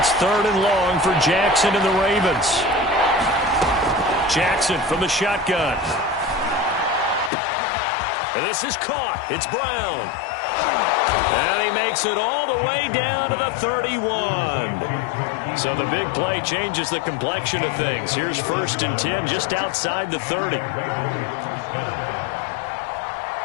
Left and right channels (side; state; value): right; drops out; at 7.3 s